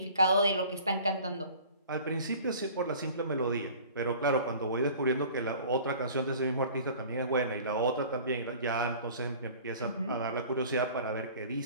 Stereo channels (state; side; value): inverted; both; correlation -0.46